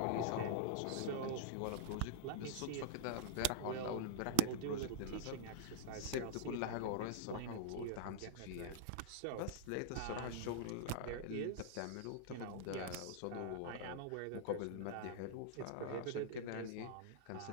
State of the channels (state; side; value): different; both; correlation -0.02